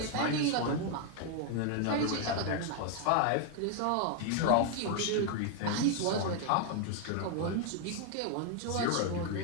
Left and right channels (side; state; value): both; different; correlation 0.00